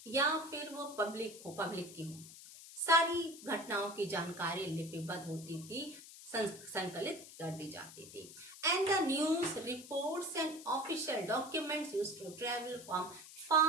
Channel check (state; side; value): noise; left; hiss, 16 dB below the sound